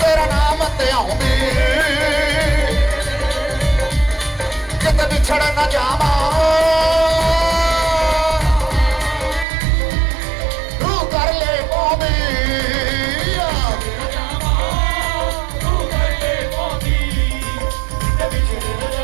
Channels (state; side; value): drops out; left; at 9.5 s